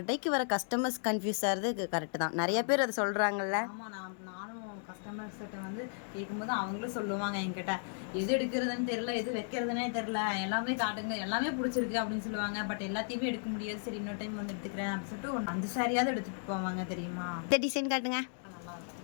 வர கஸ்டமர்ஸ் கன்ஃபியூஸ் ஆகிறது கரெக்டு தான். நிறைய பேர் அதை சொல்கிறாங்கல்ல. ஆமாம், நானும் கஸ்டமர்ஸ்கிட்ட வந்து கேட்கும்போது அவங்களும் சொல்லுவாங்க என்கிட்ட, எது எடுக்கிறதுன்னு தெரில, எது வைக்கிறதுனே தெரில, எல்லாமே காட்டுங்க, எல்லாமே பிடிச்சிருக்கு அப்படின்னு சொல்லுவாங்க. பட் எல்லாத்தையுமே எடுக்க முடியாது. சரி, இன்னொரு டைம் வந்து எடுத்துக்கிறேன் அப்படின்னு சொல்லிட்டு ஒரு 5 சாரியாவது எடுத்துகிட்டு போவாங்க தெரியுமா? இந்த டிசைன் காட்டுங்க.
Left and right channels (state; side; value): silent; right; 55 dB below the other